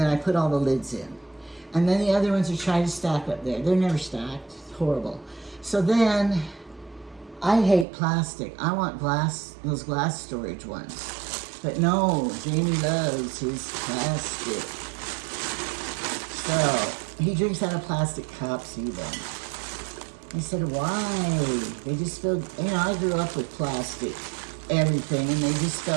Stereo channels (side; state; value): left; drops out; at 7.9 s